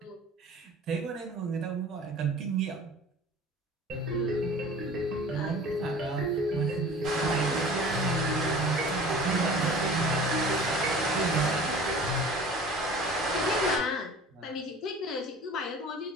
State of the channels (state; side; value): normal; both; correlation 0.43